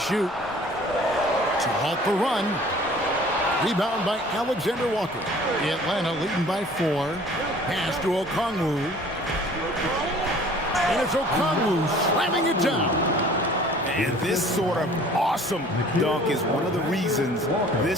To halt the run. Rebound by Alexander Walker. Atlanta leading by 4. Pass to Okongwu. And it's Okongwu slamming it down. And this sort of awesome dunk is one of the reasons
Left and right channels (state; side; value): normal; both; correlation 0.50